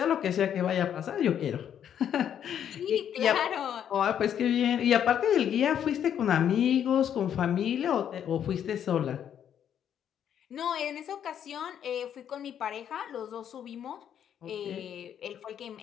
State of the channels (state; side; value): quieter; right; 9.3 dB